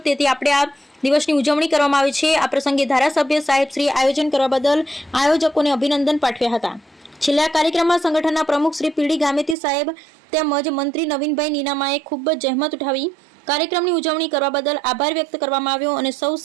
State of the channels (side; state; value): left; drops out; at 9.6 s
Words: તેથી આપણે આ દિવસની ઉજવણી કરવામાં આવી છે। આ પ્રસંગે ધારાસભ્ય સાહેબ શ્રી આયોજન કરવા બદલ આયોજકોને અભિનંદન પાઠવ્યા હતા। છેલ્લા કાર્યક્રમમાં સંગઠનના પ્રમુખ શ્રી પીડી ગામેતી સાહેબ તેમજ મંત્રી નવીનભાઈ નીનામાએ ખૂબ જ જહેમત ઉઠાવી કાર્યક્રમની ઉજવણી કરવા બદલ આભાર વ્યક્ત કરવામાં આવ્યો અને સૌ